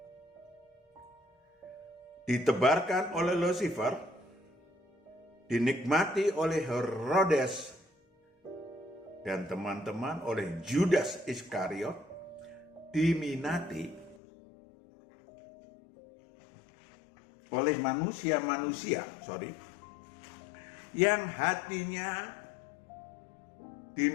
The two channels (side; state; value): right; drops out; at 14.2 s